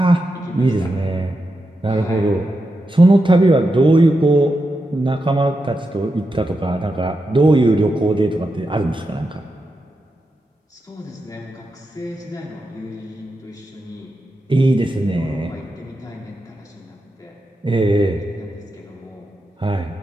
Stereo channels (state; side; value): normal; both; correlation 0.88